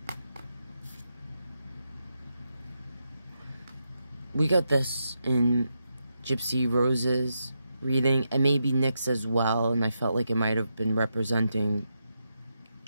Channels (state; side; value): inverted; both; correlation -0.85